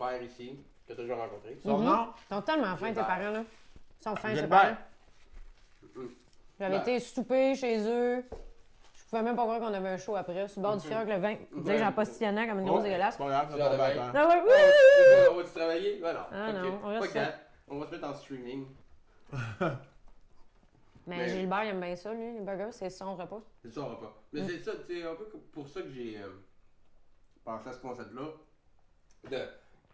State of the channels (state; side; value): identical; both; correlation 1.00